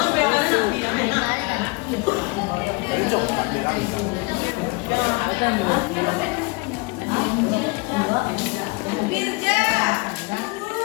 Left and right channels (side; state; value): right; quieter; 27.2 dB